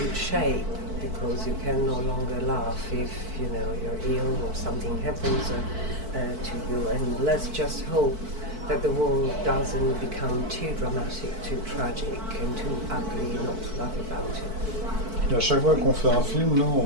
shape, because you can no longer laugh if you're ill or something happens to you. And let's just hope that the world doesn't become too dramatic, too tragic, and too ugly not to laugh about it. Et à chaque fois qu'on fait un film,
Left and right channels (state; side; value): late; left; 4.5 ms